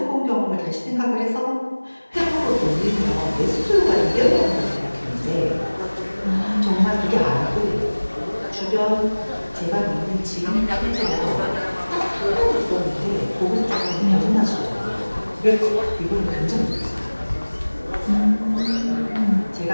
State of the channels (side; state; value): both; inverted; correlation -1.00